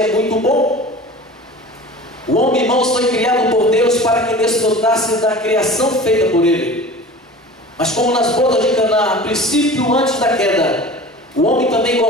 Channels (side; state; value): both; normal; correlation 0.38